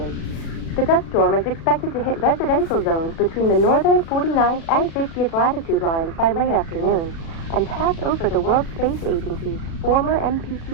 The dust storm is expected to hit residential zones between the northern 49th and 50th latitude lines by late afternoon and pass over the World Space Agency's former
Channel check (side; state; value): right; late; 36 ms